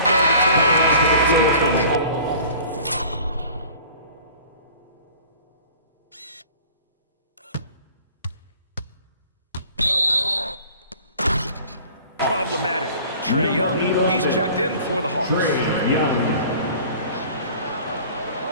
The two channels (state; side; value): inverted; both; correlation -0.46